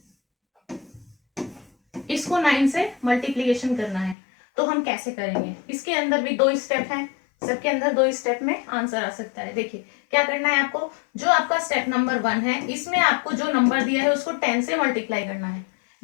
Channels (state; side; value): drops out; right; at 4.2 s